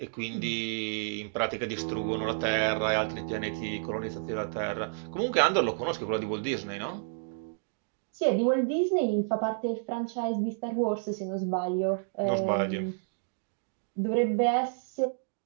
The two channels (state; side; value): silent; left; digital silence